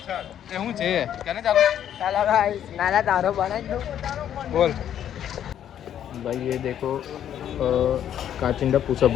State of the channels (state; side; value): quieter; right; 10.1 dB